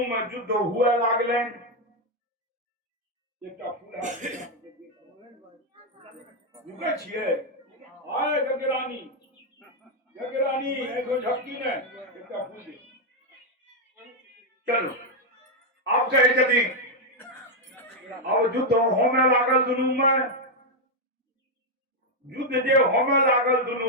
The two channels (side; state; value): both; normal; correlation 0.01